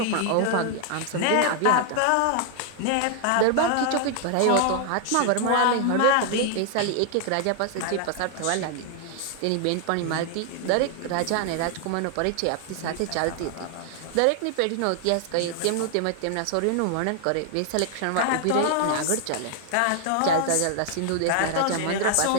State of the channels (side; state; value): both; different; correlation 0.00